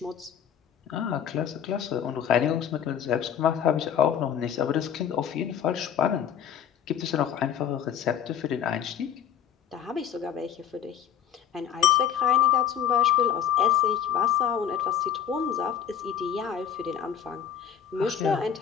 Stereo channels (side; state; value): right; quieter; 8.8 dB